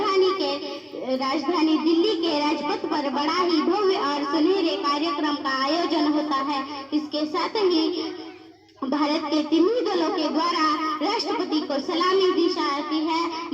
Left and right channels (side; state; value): both; identical; correlation 1.00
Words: राजधानी दिल्ली के राजपथ पर बड़ा ही भव्य और सुनहरे कार्यक्रम का आयोजन होता है। इसके साथ ही भारत के तीनों दलों के द्वारा राष्ट्रपति को सलामी दी जाती है।